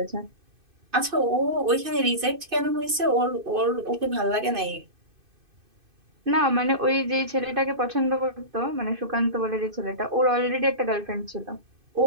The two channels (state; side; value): late; left; 2.5 ms